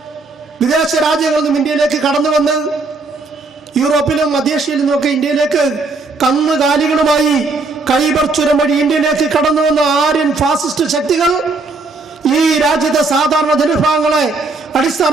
വിദേശ രാജ്യങ്ങളൊന്നും ഇന്ത്യയിലേക്ക് കടന്നു വന്ന് യൂറോപ്പിലും മധ്യേഷ്യയിലും നിന്നൊക്കെ ഇന്ത്യയിലേക്ക് കന്നുകാലികളുമായി ഖൈബർ ചുരം വഴി ഇന്ത്യയിലേക്ക് കടന്നു വന്ന ആര്യൻ ഫാസിസ്റ്റ് ശക്തികൾ ഈ രാജ്യത്തെ സാധാരണ ജനവിഭാഗങ്ങളെ, അടിസ്ഥാന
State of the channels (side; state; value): left; quieter; 3.7 dB